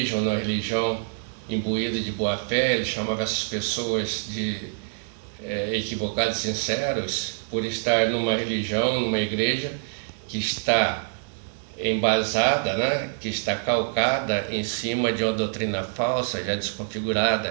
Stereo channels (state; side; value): silent; left; digital silence